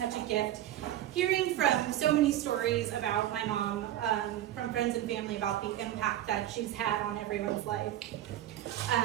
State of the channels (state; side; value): quieter; left; 12.9 dB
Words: a gift hearing from so many stories about my mom, from friends and family, about the impact that she's had on everyone's life.